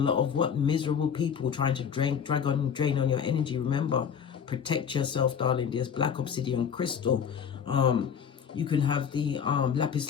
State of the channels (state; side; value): quieter; right; 7.5 dB